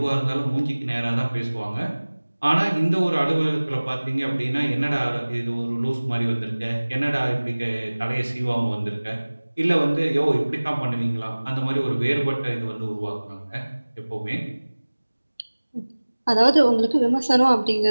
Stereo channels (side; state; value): both; inverted; correlation -1.00